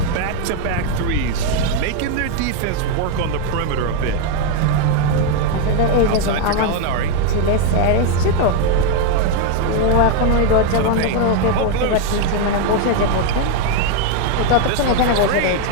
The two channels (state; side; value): different; both; correlation 0.01